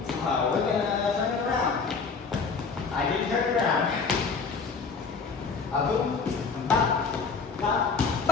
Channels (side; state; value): right; quieter; 5.0 dB